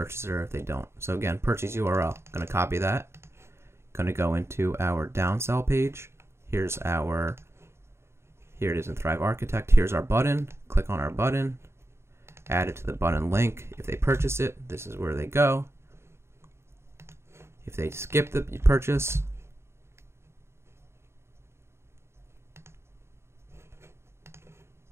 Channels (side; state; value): left; late; 0.13 ms